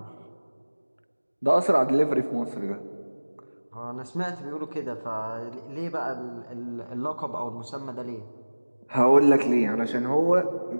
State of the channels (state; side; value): inverted; both; correlation -1.00